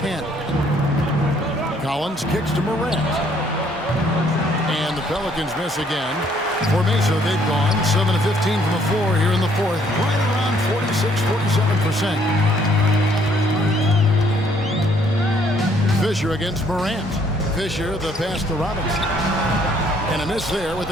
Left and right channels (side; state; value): both; normal; correlation 0.65